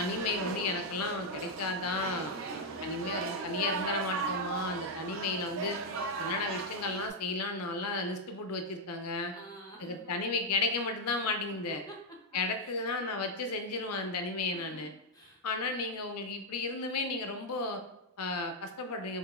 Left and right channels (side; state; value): both; normal; correlation 0.00